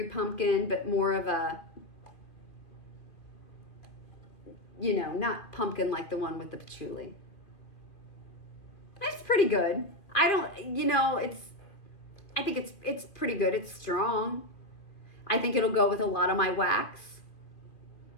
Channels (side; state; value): right; late; 2.5 ms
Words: pumpkin, but more of a, not pumpkin like the one with the patchouli. It's pretty good. I think it's pretty good. It's strong. I think it'll go with a lot of my wax.